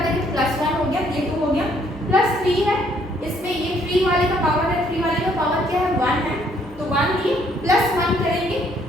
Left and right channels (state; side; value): normal; both; correlation 0.66